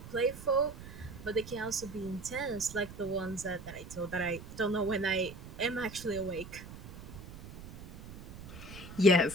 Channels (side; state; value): right; noise; rumble, 14 dB below the sound